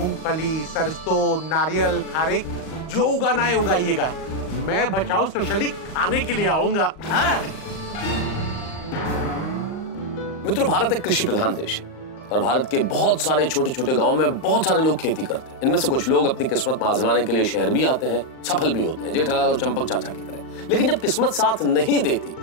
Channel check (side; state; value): right; late; 38 ms